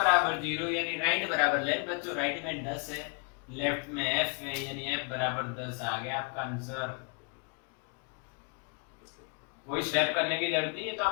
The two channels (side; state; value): right; quieter; 32.8 dB